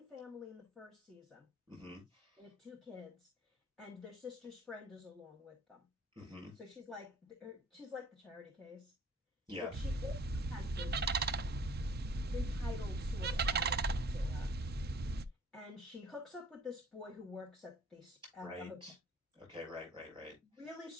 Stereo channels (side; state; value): both; normal; correlation 0.52